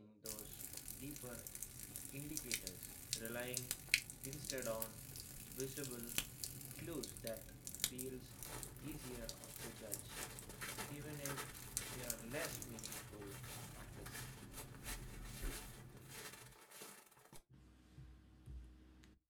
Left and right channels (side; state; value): both; identical; correlation 1.00